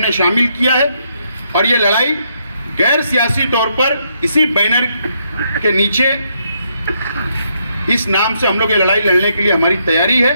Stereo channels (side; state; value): both; inverted; correlation -0.76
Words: शामिल किया है। और ये लड़ाई गैर सियासी तौर पर इसी बैनर के नीचे इस नाम से हम लोग ये लड़ाई लड़ने के लिए हमारी तैयारी है,